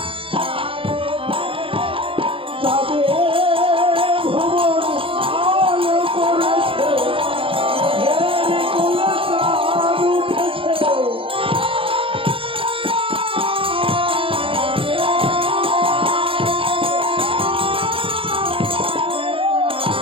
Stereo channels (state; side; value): late; left; 0.26 ms